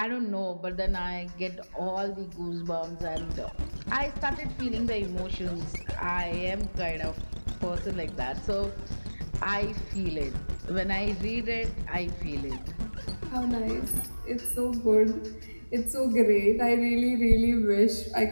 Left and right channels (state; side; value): inverted; both; correlation -1.00